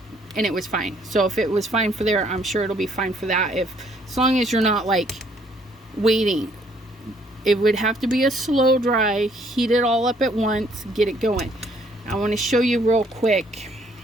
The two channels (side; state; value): both; normal; correlation 0.65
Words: and it was fine. So if it was fine for there, I'm sure it'll be fine for that. As long as you're not like waiting. It would have to be a slow dry, heat it all up at once, get it going. I want to show you real quick.